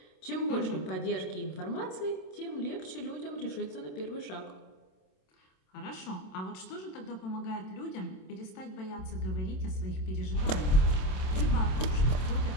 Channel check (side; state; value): right; late; 27 ms